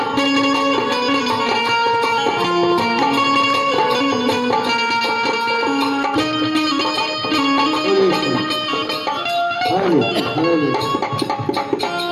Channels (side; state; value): both; identical; correlation 1.00